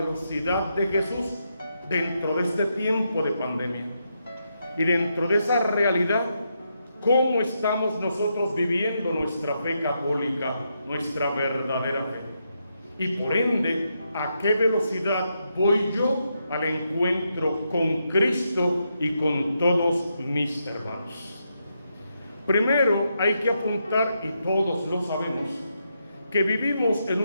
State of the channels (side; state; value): both; inverted; correlation -0.82